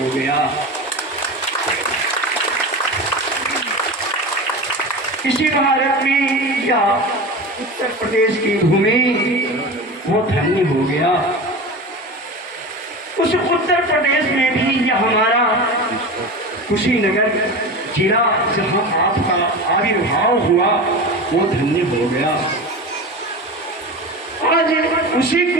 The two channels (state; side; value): normal; both; correlation 0.28